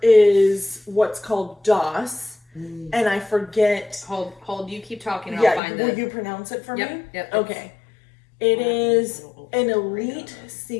is what's called DOS, and I forget. Hold. You keep talking. And I'll find will you pronounce it for me? Yep. Okay. It is an elite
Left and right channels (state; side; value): drops out; right; at 5.6 s